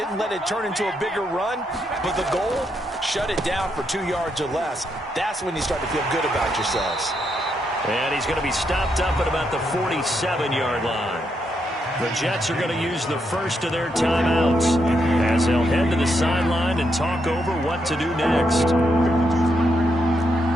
let it turn into a bigger run, but the goal, shut it down for 2 yards or less. That's when you start to feel good about yourselves. And he's going to be stopped up at about the 47-yard line. The Jets are going to use the first of their timeouts as they'll head to the sideline and talk over what to do next.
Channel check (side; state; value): both; normal; correlation 0.79